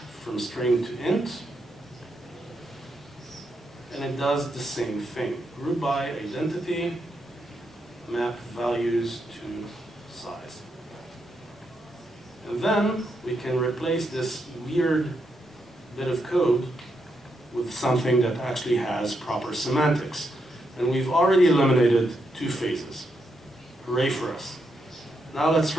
string to int, and it does the same thing. Group by identity, map values to size. And then we can replace this weird bit of code with something that actually has proper semantics. And we've already eliminated 2 phases. Hooray for us. Now let's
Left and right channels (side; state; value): both; normal; correlation 0.81